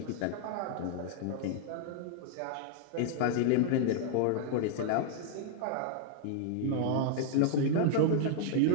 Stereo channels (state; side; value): different; both; correlation 0.00